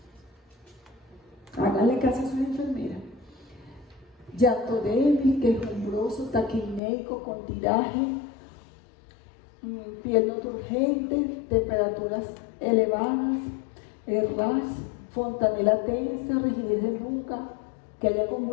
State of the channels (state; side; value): drops out; right; at 6.8 s